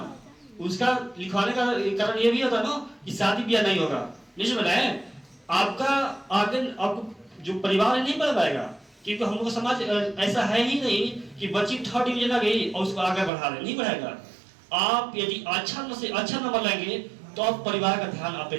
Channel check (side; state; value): left; drops out; at 13.3 s